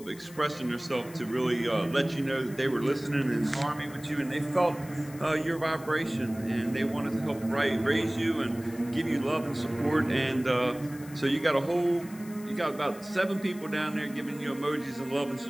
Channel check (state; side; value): noise; left; hiss, 20 dB below the sound